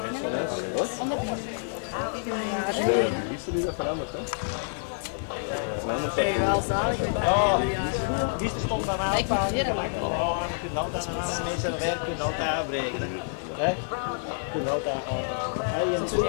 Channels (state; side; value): silent; right; digital silence